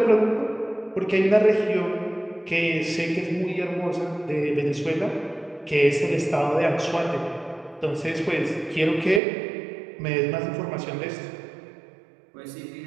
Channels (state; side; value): drops out; left; at 9.2 s